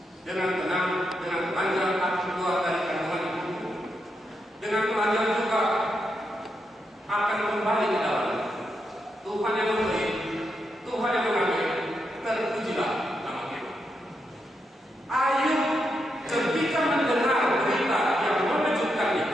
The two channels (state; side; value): normal; both; correlation 0.83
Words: dengan tenang, dengan telanjang aku keluar dari kandungan ibuku, dengan telanjang juga akan kembali ke dalamnya. Tuhan yang memberi, Tuhan yang mengambil, terpujilah nama kita. Ayub ketika mendengar berita yang mengejutkan